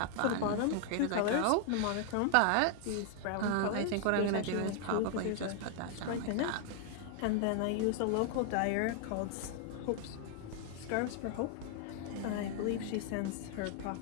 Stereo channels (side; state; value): both; different; correlation 0.00